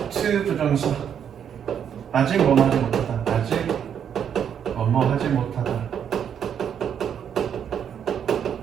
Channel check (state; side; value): quieter; left; 8.4 dB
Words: to 부정사 아직 뭐뭐 하지 못하다. 아직 뭐뭐 하지 못하다.